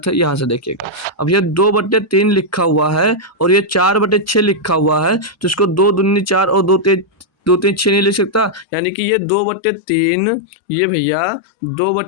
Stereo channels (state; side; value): drops out; right; at 8.7 s